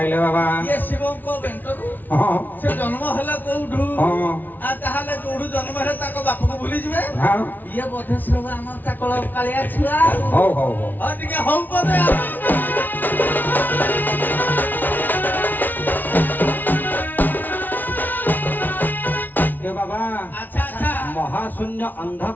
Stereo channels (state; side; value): late; right; 0.085 ms